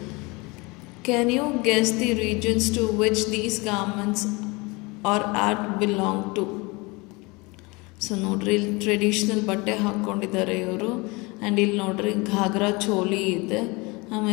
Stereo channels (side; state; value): right; quieter; 25.9 dB